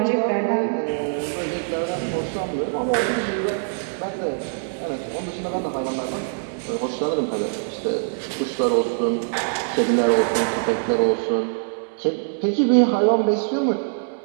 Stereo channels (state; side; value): silent; left; digital silence